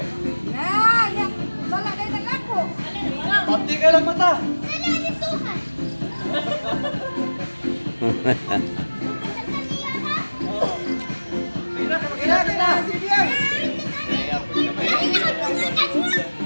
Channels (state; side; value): inverted; both; correlation -1.00